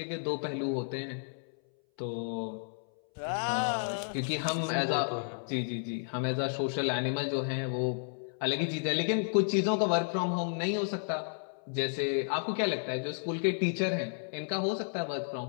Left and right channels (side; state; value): right; silent; 56 dB below the other